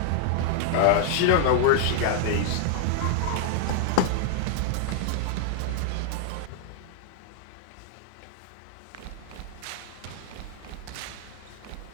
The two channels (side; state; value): both; different; correlation -0.01